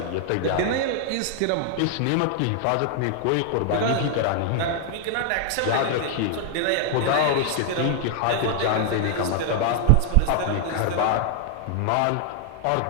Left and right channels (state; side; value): different; both; correlation 0.00